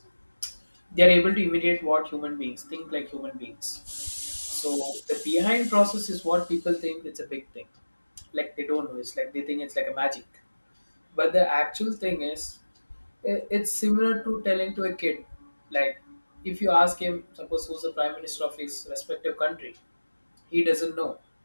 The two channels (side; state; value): both; inverted; correlation -1.00